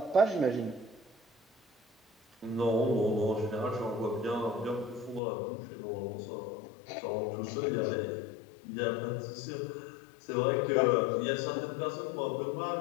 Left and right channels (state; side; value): drops out; right; at 5.2 s